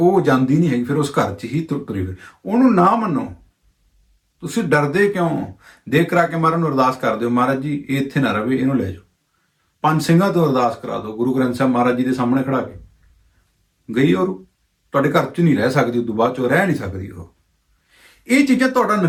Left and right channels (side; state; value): both; identical; correlation 1.00